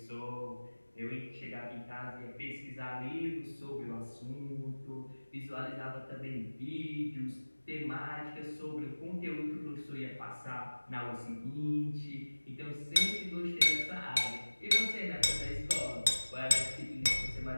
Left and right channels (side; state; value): both; inverted; correlation -1.00